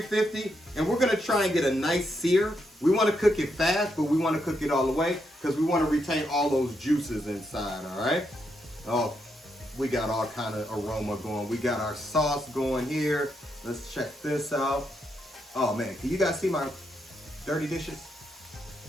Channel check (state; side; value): normal; both; correlation 0.80